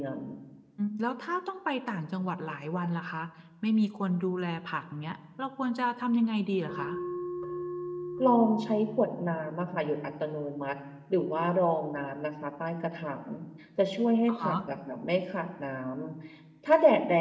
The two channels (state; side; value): identical; both; correlation 1.00